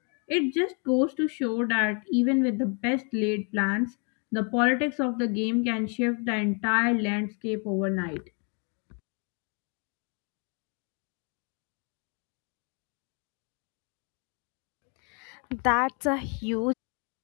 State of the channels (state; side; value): quieter; right; 37.3 dB